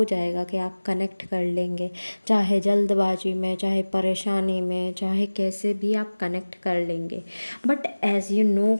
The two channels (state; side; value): inverted; both; correlation -1.00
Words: जाएगा कि आप कनेक्ट कर लेंगे, चाहे जल्दबाजी में, चाहे परेशानी में, चाहे कैसे भी आप कनेक्ट कर लेंगे। बट एज़ यू नो